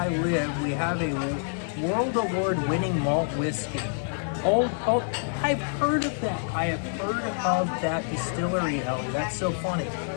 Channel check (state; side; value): silent; right; 60 dB below the other